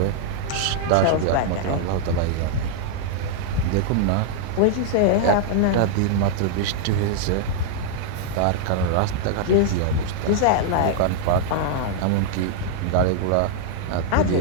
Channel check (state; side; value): different; both; correlation -0.01